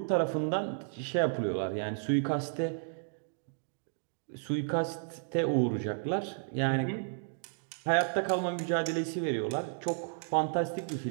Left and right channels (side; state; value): left; silent; digital silence